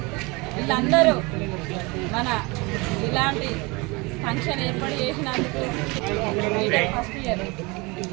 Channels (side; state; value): left; quieter; 26.1 dB